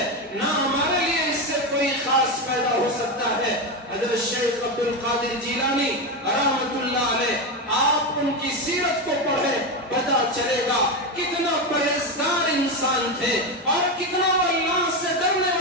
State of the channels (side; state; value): both; normal; correlation 0.14